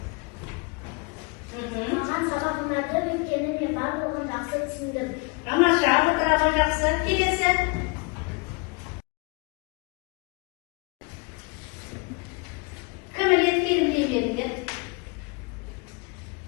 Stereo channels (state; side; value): quieter; right; 30.0 dB